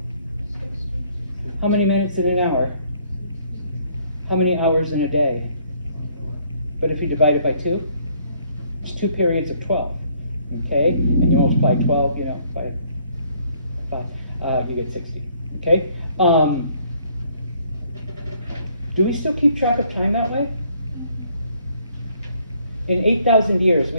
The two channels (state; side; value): inverted; both; correlation -0.64